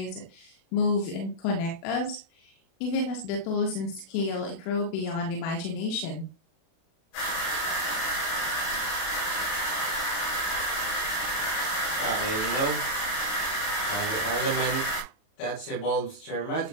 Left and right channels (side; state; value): right; late; 36 ms